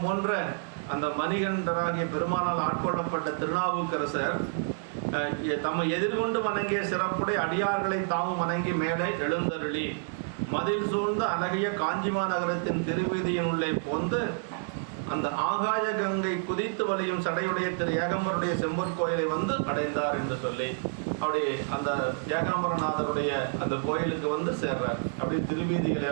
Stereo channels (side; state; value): left; silent; digital silence